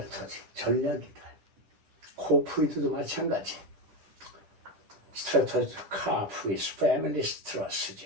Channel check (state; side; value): late; left; 10 ms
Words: 전략이다. 코프리드도 마찬가지. 스트래터지, 카프리스, 패밀리